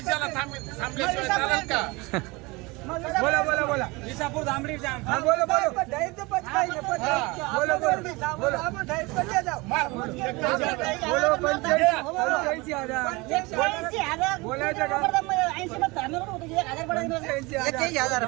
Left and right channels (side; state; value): left; quieter; 24.5 dB